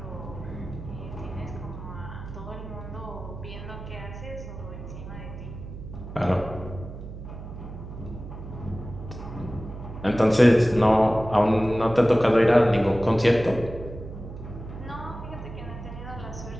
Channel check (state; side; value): noise; right; hum, 11 dB below the sound